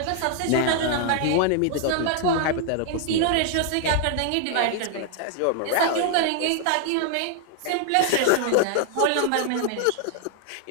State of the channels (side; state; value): both; different; correlation 0.00